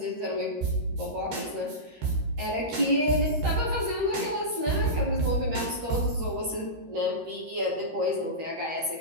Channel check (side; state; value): left; late; 13 ms